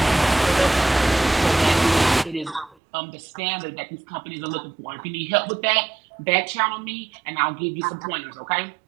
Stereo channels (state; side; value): drops out; left; at 2.8 s